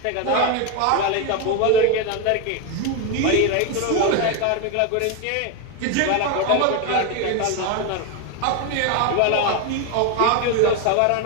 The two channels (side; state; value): both; different; correlation 0.02